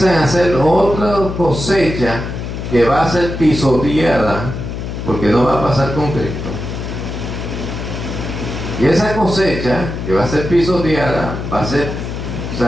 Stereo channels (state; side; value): noise; left; hum, 6 dB below the sound